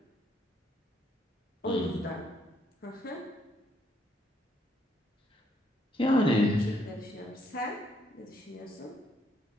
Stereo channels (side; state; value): both; normal; correlation 0.71